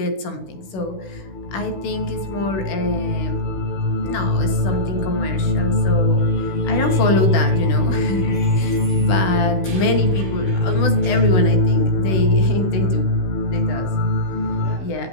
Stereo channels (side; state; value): right; late; 16 ms